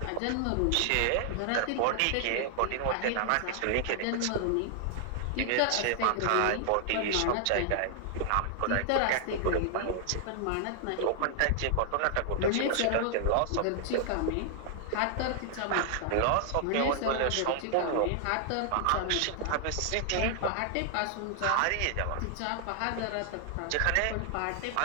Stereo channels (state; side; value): different; both; correlation 0.00